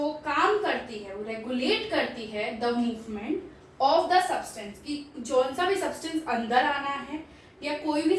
काम करती है वो रेगुलेट करती है the movement of the substance, कि जौन सा भी सब्सटेंस अंदर आना है या कोई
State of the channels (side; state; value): both; identical; correlation 1.00